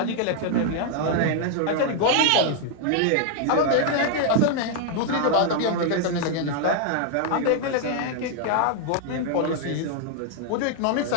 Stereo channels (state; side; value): different; both; correlation 0.00